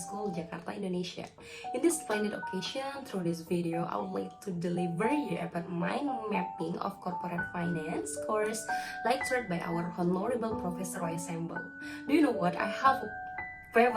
School, Jakarta, Indonesia. In this splendid occasion, through this video, I would like to deliver you about mind mapping of corporate finance course lectured by our honorable Professor Roy Sembel. Do you know what? I have a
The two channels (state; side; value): identical; both; correlation 1.00